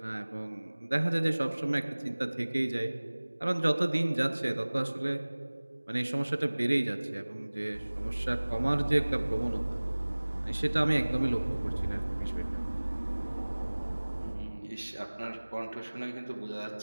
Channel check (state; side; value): inverted; both; correlation -1.00